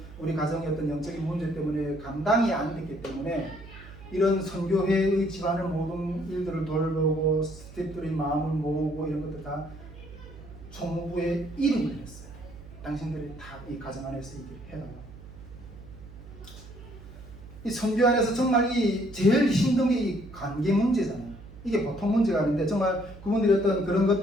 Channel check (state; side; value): noise; right; hum, 17 dB below the sound